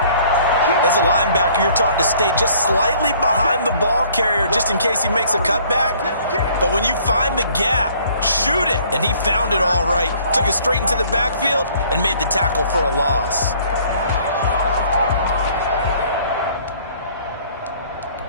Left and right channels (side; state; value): both; inverted; correlation -0.57